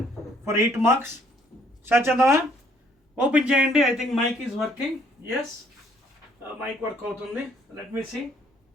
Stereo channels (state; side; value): normal; both; correlation 0.64